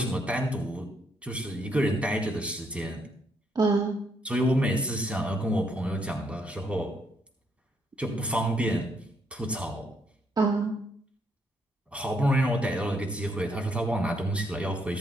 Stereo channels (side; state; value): both; normal; correlation 0.74